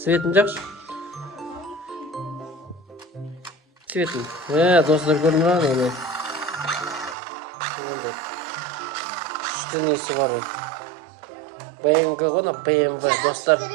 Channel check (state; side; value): drops out; left; at 7.2 s